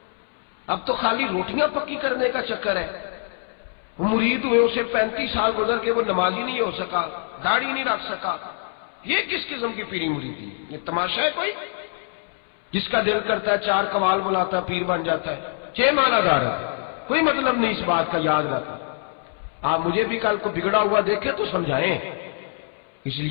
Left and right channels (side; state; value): right; silent; 62 dB below the other